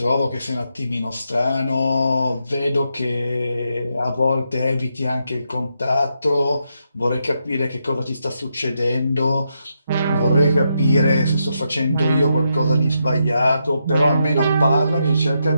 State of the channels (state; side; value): inverted; both; correlation -0.82